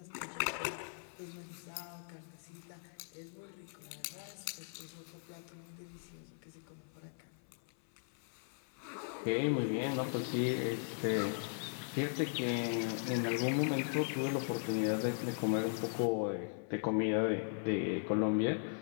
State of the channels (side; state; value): right; silent; 52 dB below the other